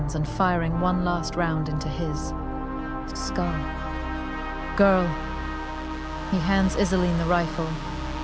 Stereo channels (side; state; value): both; identical; correlation 1.00